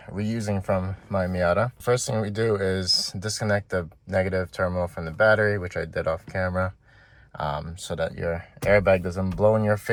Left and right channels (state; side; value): identical; both; correlation 1.00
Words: reusing from my Miata. First thing we do is disconnect the negative terminal from the battery, which I did off camera, so that your airbag doesn't blow in your